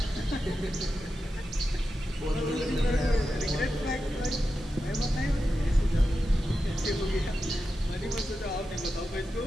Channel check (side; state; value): both; normal; correlation 0.90